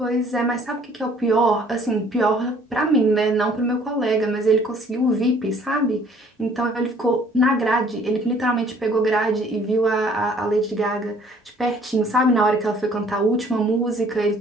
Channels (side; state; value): both; normal; correlation 0.58